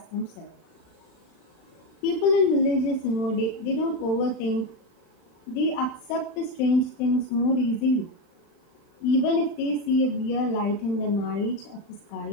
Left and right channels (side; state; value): right; late; 35 ms